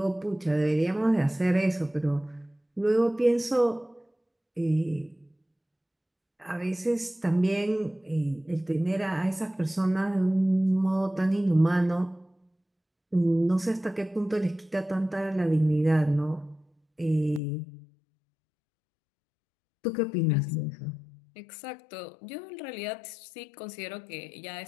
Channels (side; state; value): right; drops out; at 17.4 s